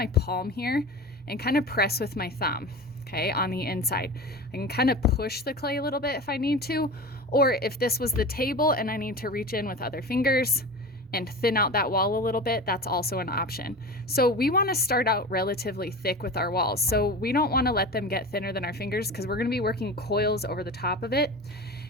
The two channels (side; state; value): both; normal; correlation 0.31